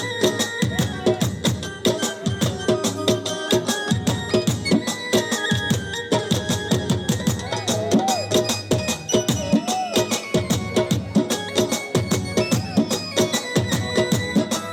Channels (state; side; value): identical; both; correlation 1.00